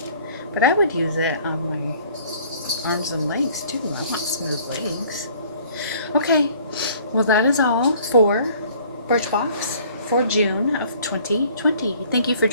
but I would use it on my arms and legs too. I want smooth legs. Okay, well that is all for Birchbox for June of 2020. Thank you for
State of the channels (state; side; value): inverted; both; correlation -0.55